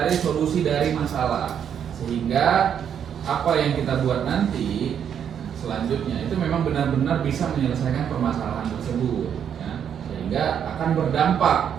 solusi dari masalah, sehingga apa yang kita buat nanti selanjutnya itu memang benar-benar bisa menyelesaikan permasalahan tersebut ya, sehingga akan berdampak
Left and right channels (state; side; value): quieter; left; 8.5 dB